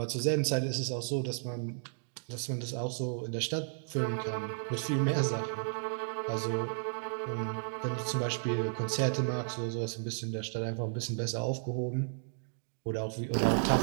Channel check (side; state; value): left; silent; digital silence